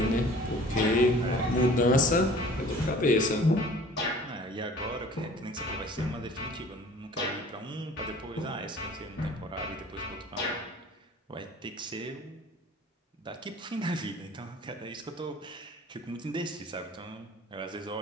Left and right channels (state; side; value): normal; both; correlation 0.48